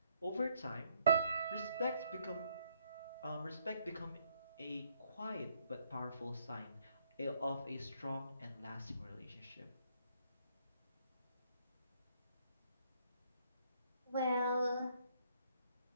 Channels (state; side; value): inverted; both; correlation -0.70